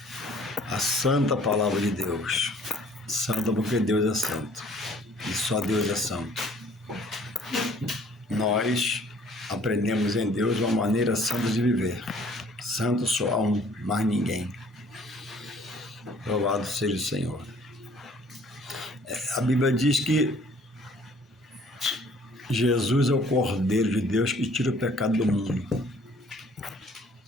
a santa palavra de Deus. Santa porque Deus é santo e só Deus é santo. Nós aprendemos em Deus uma maneira santa de viver. Santo só há um, mais ninguém. Louvado seja o Senhor. A Bíblia diz que Jesus é o Cordeiro de Deus que tira o pecado do mundo.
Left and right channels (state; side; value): normal; both; correlation 0.56